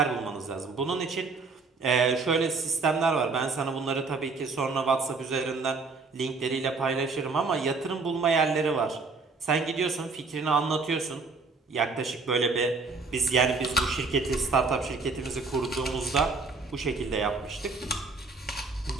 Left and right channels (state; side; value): quieter; left; 4.1 dB